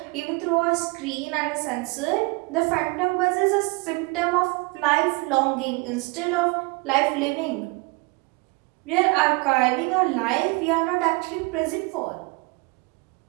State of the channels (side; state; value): left; quieter; 27.2 dB